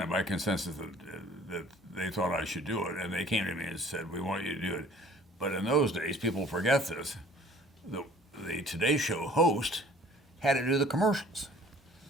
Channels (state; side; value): normal; both; correlation 0.52